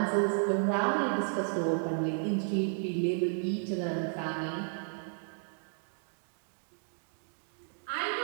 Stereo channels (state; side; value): silent; left; digital silence